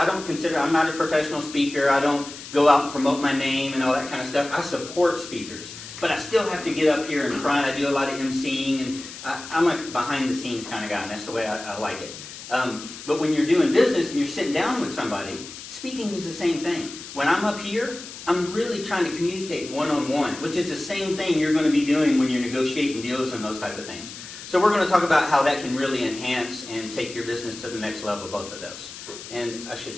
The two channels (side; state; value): left; noise; hiss, 13 dB below the sound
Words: professional speaker. I don't go out and promote my name and all that kind of stuff. I support speakers. But I still have to get up here in front. I do a lot of emceeing, and I'm a behind-the-scenes kind of guy, and that's the way I like it. But when you're doing business and you're sitting down with somebody, speaking is the same thing. When I'm up here, I'm really trying to communicate one-on-one, which is the same thing you're going to be doing when you're negotiating deals and those type of things. So we're going to talk about how that can really enhance and take your business to the next level, both of those. And I should